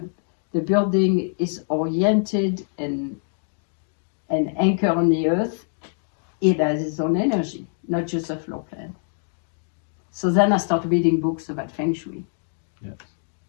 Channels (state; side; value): silent; right; digital silence